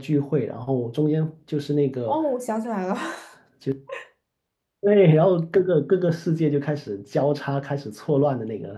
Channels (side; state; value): both; identical; correlation 1.00